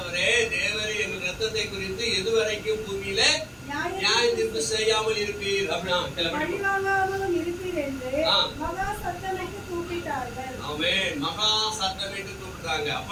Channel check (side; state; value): both; identical; correlation 1.00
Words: தேவரே எங்கள் இரத்தத்தை குறித்து எதுவரைக்கும் பூமியில நியாயம் தீர்ப்பு செய்யாமல் இருப்பீர் அப்படின்னா பழிவாங்காமலும் இருப்பீர் என்று மகா சத்தமிட்டு கூப்பிட்டார்கள். ஆமென், மகா சத்தமிட்டு கூப்பிட்டாங்க.